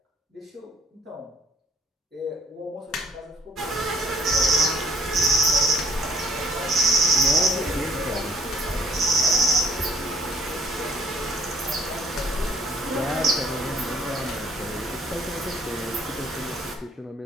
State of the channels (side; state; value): both; normal; correlation 0.60